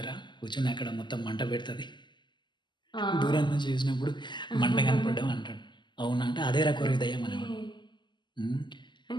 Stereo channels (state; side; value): late; right; 0.22 ms